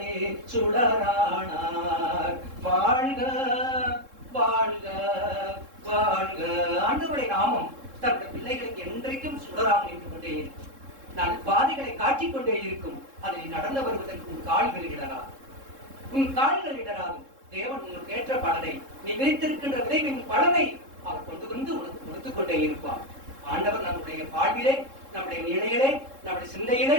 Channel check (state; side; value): late; left; 3.7 ms